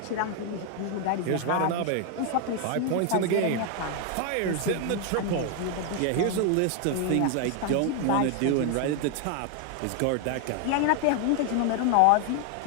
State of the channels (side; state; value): both; different; correlation 0.00